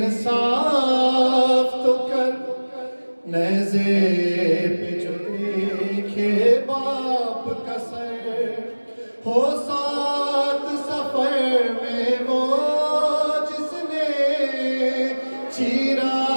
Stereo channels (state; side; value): inverted; both; correlation -1.00